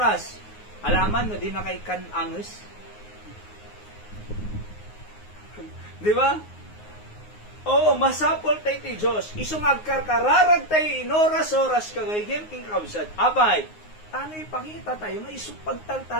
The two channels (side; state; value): right; late; 9.5 ms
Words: Alaman no, di na kay kananges. Di ba? Oo, masapol tayo ti Diyos. Isungag karkararag tayo inoras-oras kagayem king kabsat. Abay, ano ipakita tayo nga